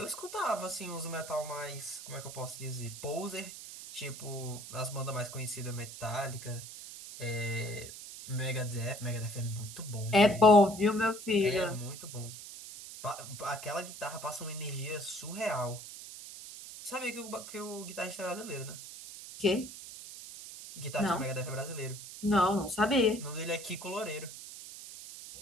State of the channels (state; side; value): noise; right; hiss, 12 dB below the sound